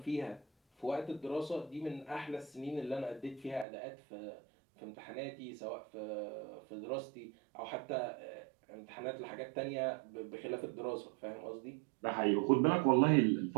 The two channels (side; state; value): left; drops out; at 3.7 s